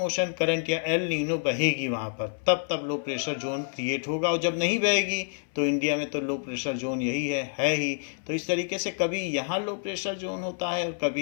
ओशन करंट या एल नीनो बहेगी वहाँ पर, तब तब लो प्रेशर जोन क्रिएट होगा, और जब नहीं बहेगी तो इंडिया में तो लो प्रेशर जोन यही है ही। तो इस तरीके से कभी यहाँ लो प्रेशर जोन होता है और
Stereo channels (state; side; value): silent; right; 59 dB below the other